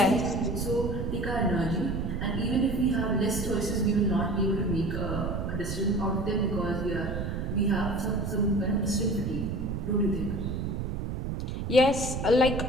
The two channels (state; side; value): noise; right; rumble, 3 dB below the sound